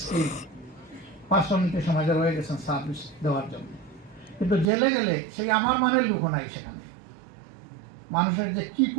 স্কিল পার্সোনালিটি সমাজে রয়ে গেছেন সার্ভিস দেওয়ার জন্য। কিন্তু জেলে গেলে সেই আমার মানের লোক নাই সেখানে। মানুষের যে কি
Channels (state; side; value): drops out; left; at 4.7 s